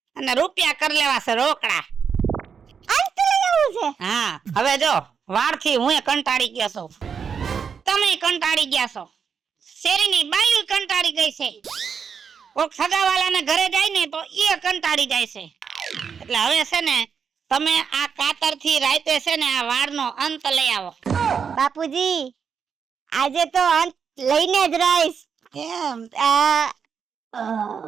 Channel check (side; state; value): left; quieter; 6.6 dB